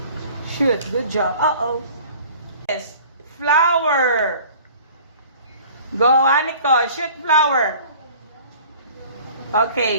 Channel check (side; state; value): both; inverted; correlation -0.47